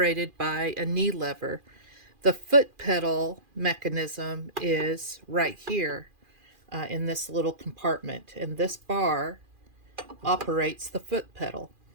by a knee lever. The foot pedal mechanism is right here in this little compartment, and this bar operates the foot pedal.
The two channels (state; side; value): late; left; 2.4 ms